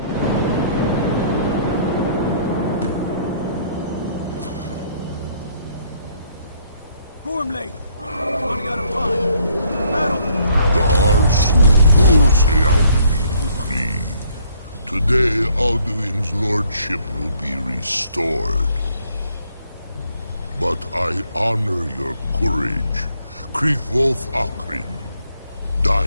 Gormley! Running out of time! Battle! Today, Alduin's lordship will be restored. But I honor your courage. Krifwolf Akrin.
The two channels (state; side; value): inverted; both; correlation -0.66